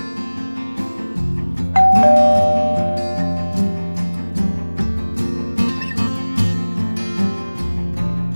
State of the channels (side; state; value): both; inverted; correlation -1.00